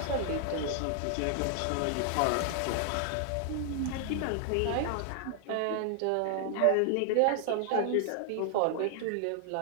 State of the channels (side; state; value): both; different; correlation 0.00